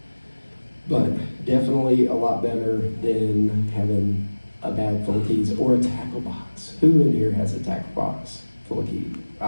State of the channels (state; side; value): inverted; both; correlation -1.00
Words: But definitely a lot better than having a bag full of keys or a tackle box. Who in here has a tackle box full of keys?